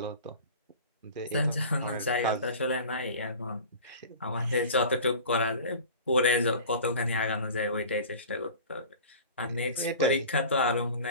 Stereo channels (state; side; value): inverted; both; correlation -0.39